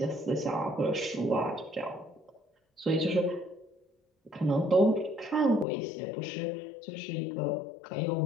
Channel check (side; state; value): right; drops out; at 5.7 s